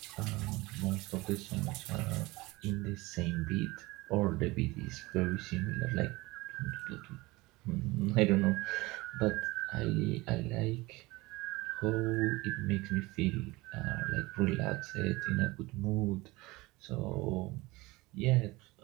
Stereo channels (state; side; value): quieter; left; 21.8 dB